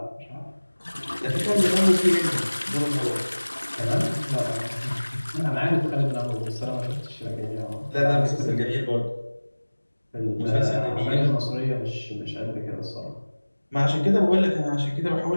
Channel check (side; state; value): both; inverted; correlation -1.00